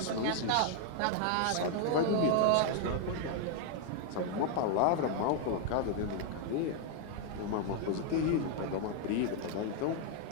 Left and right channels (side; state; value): both; different; correlation 0.00